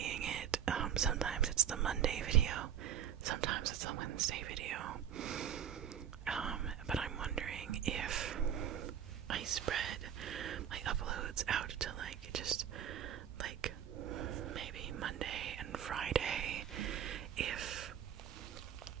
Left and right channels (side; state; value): left; quieter; 9.4 dB